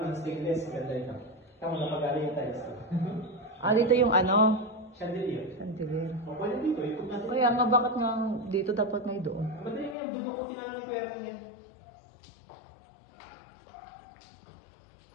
stainless, ganda ito. Tama, napag-ari yung tiles. Dito yung Chandelier. chandelier. O, pwede dito. Ikot natin. Kaya nga bakit nga dito dapat may doon? Madali na yan. Dudukutin na lang ng pera yan.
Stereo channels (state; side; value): drops out; right; at 10.0 s